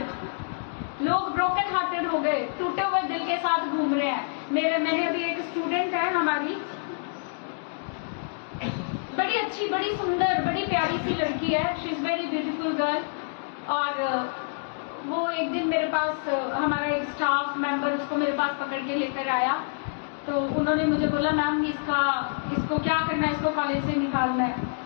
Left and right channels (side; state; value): right; silent; digital silence